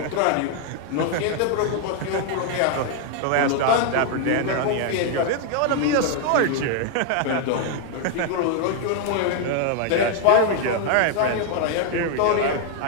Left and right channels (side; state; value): both; different; correlation 0.00